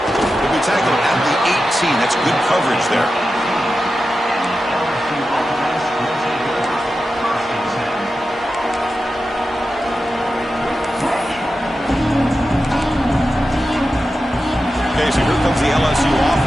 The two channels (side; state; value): both; normal; correlation 0.91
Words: He'll be tackled at the 18. That's good coverage there. Okay, so here comes the LSU